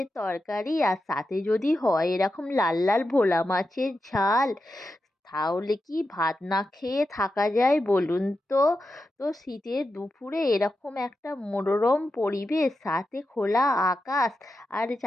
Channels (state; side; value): normal; both; correlation 0.89